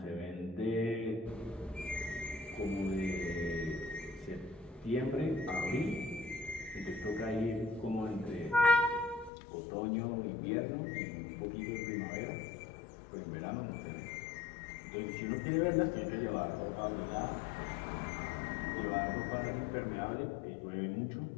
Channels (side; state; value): right; drops out; at 9.3 s